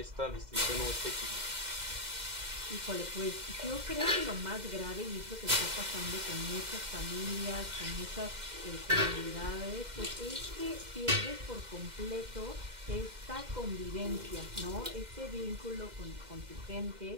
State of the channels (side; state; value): left; late; 2.1 ms